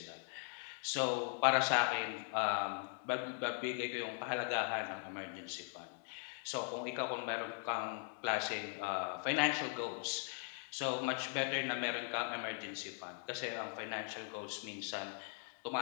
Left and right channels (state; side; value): silent; right; 51 dB below the other